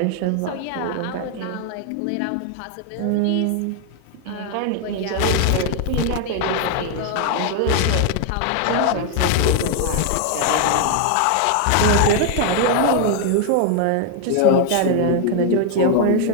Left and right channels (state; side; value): different; both; correlation 0.00